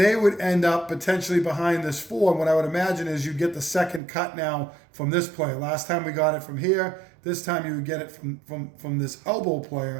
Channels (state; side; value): drops out; left; at 4.0 s